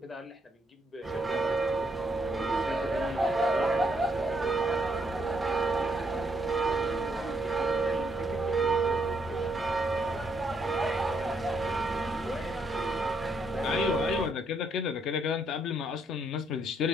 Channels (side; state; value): both; normal; correlation 0.74